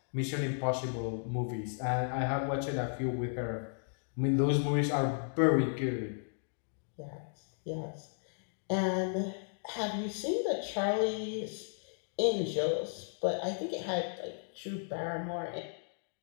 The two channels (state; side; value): silent; right; digital silence